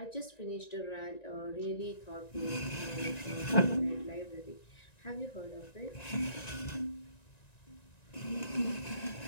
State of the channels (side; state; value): right; late; 1.9 ms